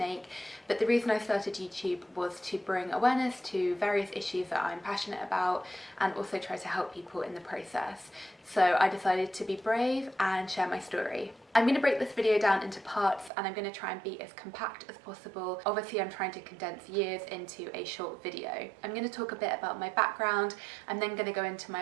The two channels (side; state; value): left; drops out; at 13.3 s